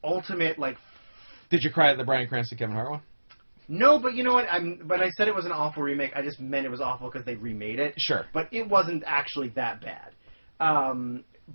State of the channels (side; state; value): both; inverted; correlation -1.00